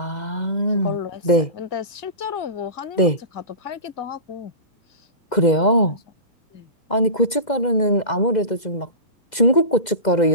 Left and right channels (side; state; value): right; late; 2.0 ms